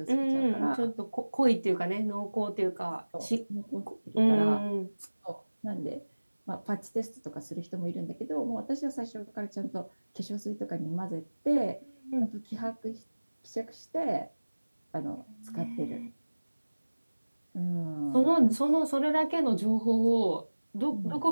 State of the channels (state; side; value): inverted; both; correlation -1.00